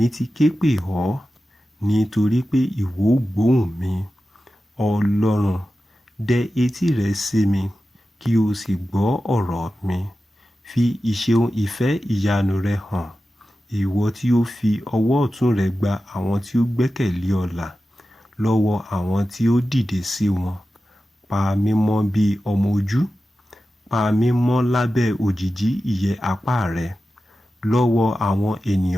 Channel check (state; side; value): normal; both; correlation 0.93